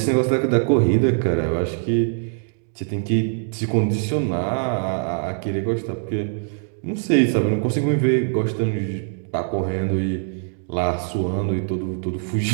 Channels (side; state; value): left; silent; 63 dB below the other